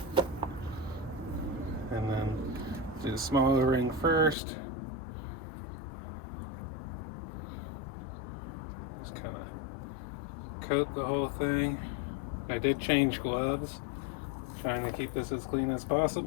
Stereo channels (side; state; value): right; drops out; at 4.4 s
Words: And then do the small O-ring first. Just kind of coat the whole thing. I did change gloves, trying to keep this as clean as